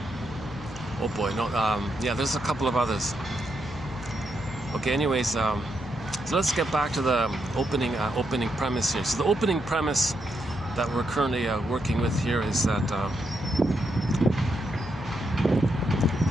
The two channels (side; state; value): left; noise; hum, 15 dB below the sound